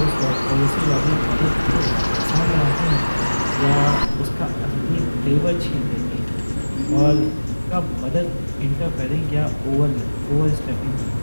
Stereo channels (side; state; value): both; inverted; correlation -1.00